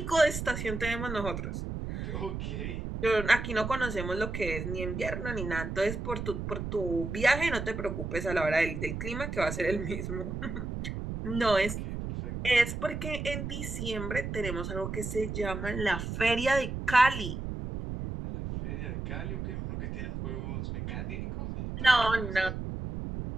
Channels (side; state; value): right; noise; rumble, 5 dB below the sound